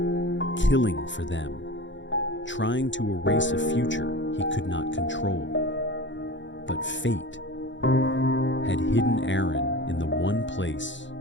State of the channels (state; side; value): late; right; 0.54 ms